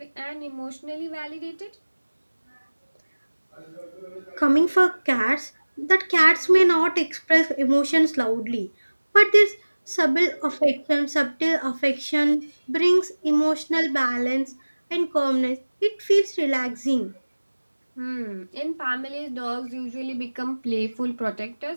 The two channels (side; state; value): both; inverted; correlation -1.00